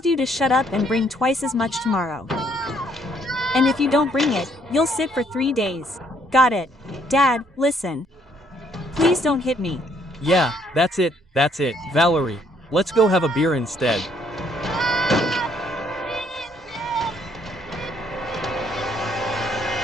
you to shut up and bring twice as much tomorrow. And if you don't bring it, you'll sit for 3 days. Got it? Dad, listen. Please don't hit me. Yeah, that's it, Valerie. Let's go have a beer instead.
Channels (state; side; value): normal; both; correlation 0.67